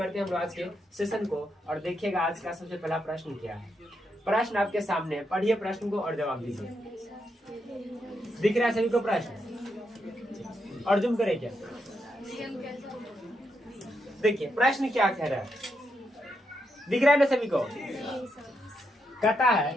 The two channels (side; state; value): both; normal; correlation 0.81